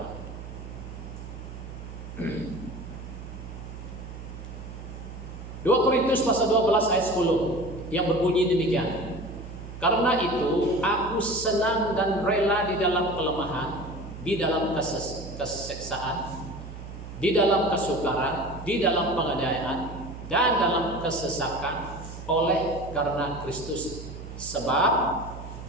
2 Korintus pasal 12 ayat 10 yang berbunyi demikian. Karena itu aku senang dan rela di dalam kelemahan, di dalam keseksaan, di dalam kesukaran, di dalam penganiayaan, dan dalam kesesakan oleh karena Kristus. Sebab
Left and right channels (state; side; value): noise; right; hum, 11 dB below the sound